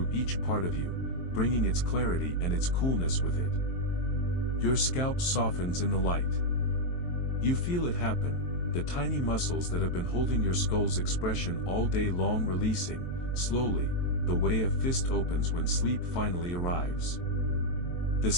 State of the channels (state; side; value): late; right; 23 ms